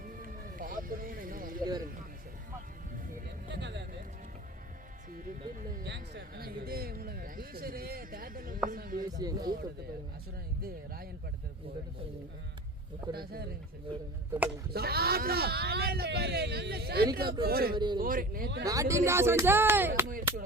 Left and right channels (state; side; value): normal; both; correlation 0.36